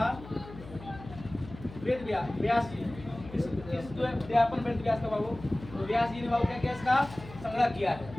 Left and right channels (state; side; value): noise; left; hum, 16 dB below the sound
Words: वेद व्यास जी। अध्यापन वेद व्यास का बाबू, तो व्यास जी ने बाबू क्या किया? इसका संग्रह किया है।